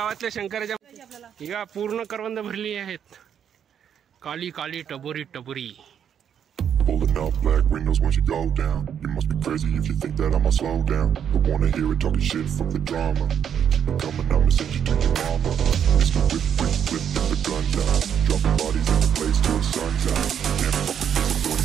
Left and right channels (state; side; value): quieter; left; 8.6 dB